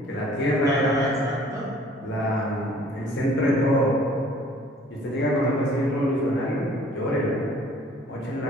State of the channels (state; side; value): normal; both; correlation 0.54